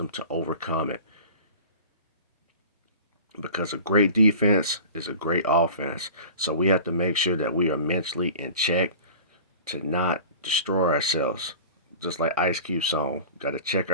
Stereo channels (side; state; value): both; inverted; correlation -0.40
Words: to overcome it. Because a great defense is a great offense. So we have to make sure that we are mentally in check to not destroy ourselves. Just like Ice Cube song, got to check